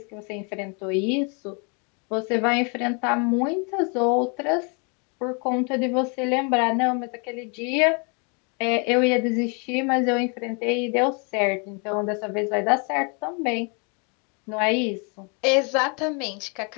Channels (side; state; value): right; quieter; 35.0 dB